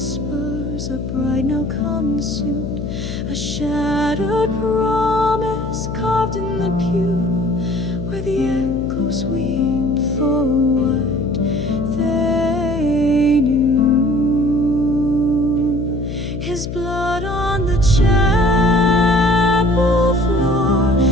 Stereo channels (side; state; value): left; noise; hum, 6 dB below the sound